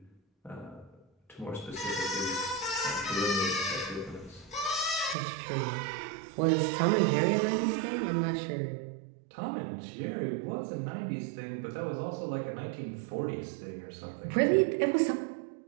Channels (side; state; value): left; drops out; at 5.2 s